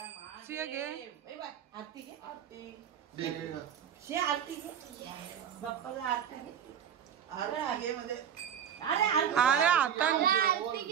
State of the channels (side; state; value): left; quieter; 8.8 dB